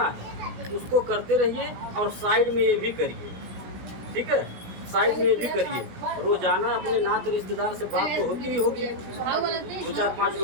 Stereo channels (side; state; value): left; late; 16 ms